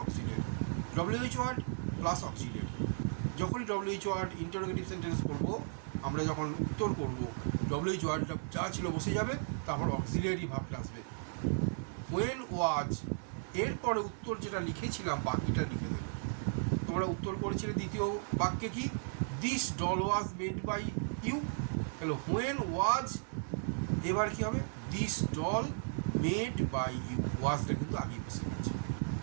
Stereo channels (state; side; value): silent; left; digital silence